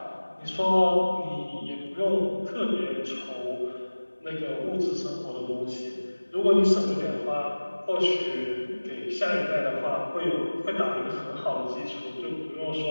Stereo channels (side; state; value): both; inverted; correlation -1.00